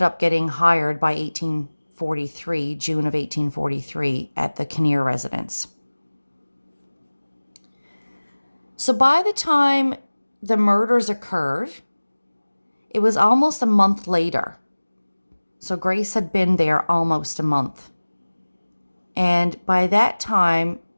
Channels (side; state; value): both; inverted; correlation -1.00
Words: up getting hired by June of 1843, at the Kinnear residence. So by the time the murders occurred, it was almost a month later. So Grace had been there almost a month. And by that time,